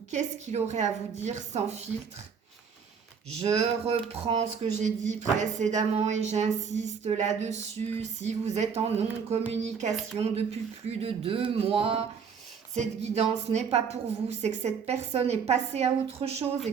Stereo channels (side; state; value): left; quieter; 6.4 dB